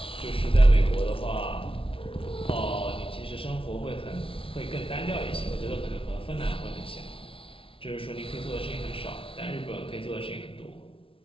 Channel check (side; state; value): right; late; 0.26 ms